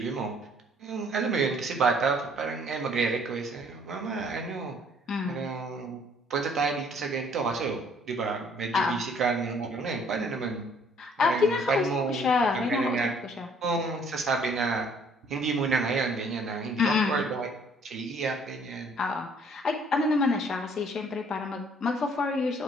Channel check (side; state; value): both; normal; correlation 0.60